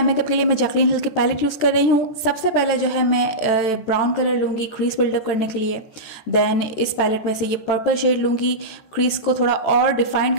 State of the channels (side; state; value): right; late; 14 ms